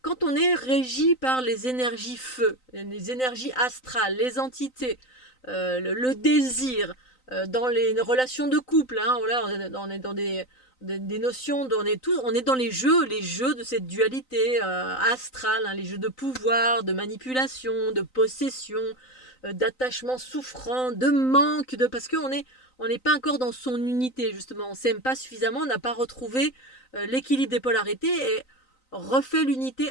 Quand on est régi par les énergies feu, les énergies astrales, les entités, le désir, dans les relations de couple, hein, voilà, on est dans des notions, on est dans les jeux de cette dualité astrale, hein, les jeux de pouvoir, de manipulation, de possession, d'attachement souffrant, de manque, parce qu'on n'est pas encore dans son unité, justement. On ne s'aime pas suffisamment, on n'a pas retrouvé l'équilibre des polarités et refait l'unité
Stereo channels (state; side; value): late; right; 3.9 ms